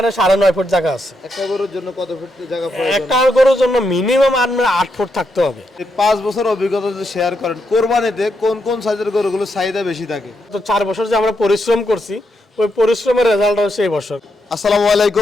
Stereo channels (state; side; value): normal; both; correlation 0.81